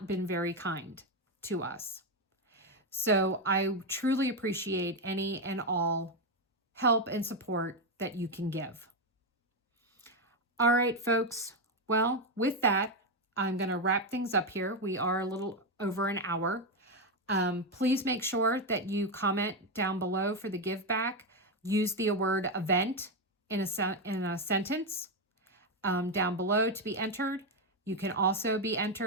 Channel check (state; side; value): normal; both; correlation 0.07